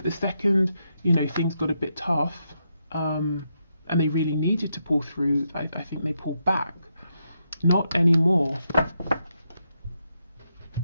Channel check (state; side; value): inverted; both; correlation -0.82